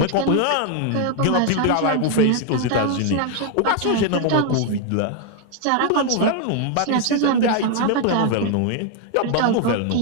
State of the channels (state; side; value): different; both; correlation 0.01